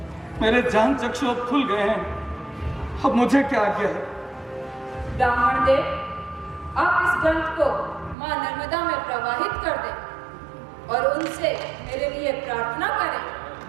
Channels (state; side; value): drops out; left; at 8.2 s